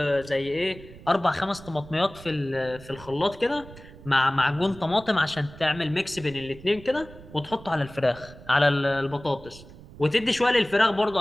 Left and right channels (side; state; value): right; noise; rumble, 18 dB below the sound